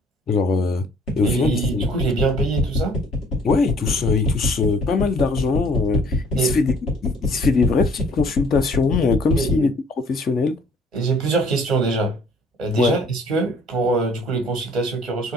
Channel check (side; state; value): both; normal; correlation 0.57